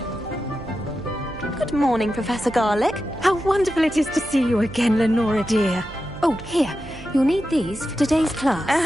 Good morning, Professor Garlick. How wonderful it is to see you again, Lenora dear. Oh, here. You'll need these for today's class.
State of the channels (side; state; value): right; noise; hum, 15 dB below the sound